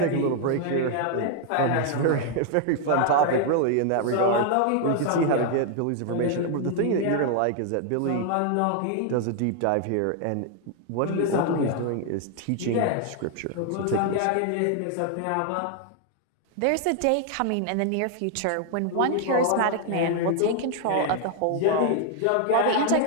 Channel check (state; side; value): different; both; correlation 0.00